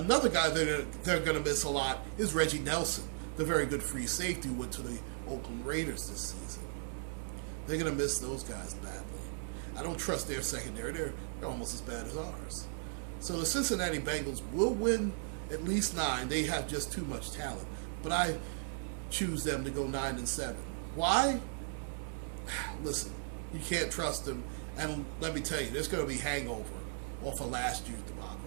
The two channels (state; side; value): silent; left; 54 dB below the other